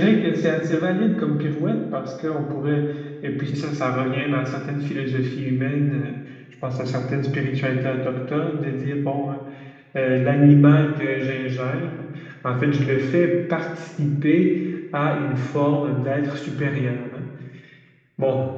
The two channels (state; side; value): identical; both; correlation 1.00